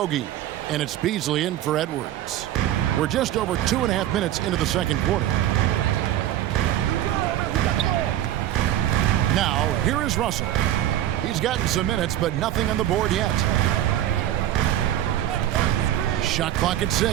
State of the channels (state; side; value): quieter; left; 12.6 dB